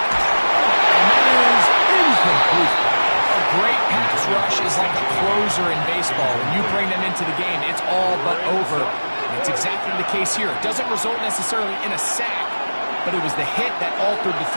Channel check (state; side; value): inverted; both; correlation -1.00